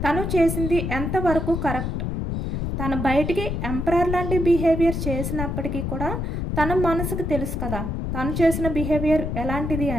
తను చేసింది ఎంతవరకు కరెక్ట్, తను బయటికి ఎంపరర్ లాంటి బిహేవియర్ చేసినప్పటికీ కూడా తన మనసుకు తెలుసు కదా తను చేసిన బిహేవియర్ ఎలాంటిది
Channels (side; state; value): left; noise; rumble, 2 dB below the sound